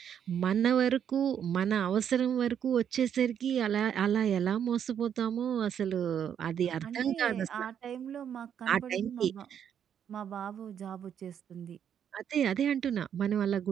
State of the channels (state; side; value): quieter; left; 8.7 dB